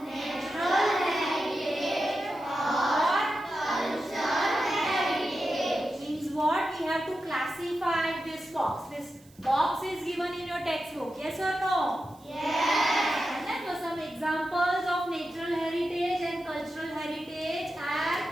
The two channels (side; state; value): right; noise; hiss, 28 dB below the sound